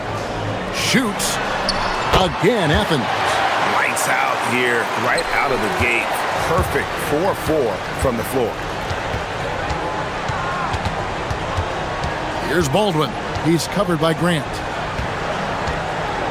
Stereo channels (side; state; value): both; identical; correlation 1.00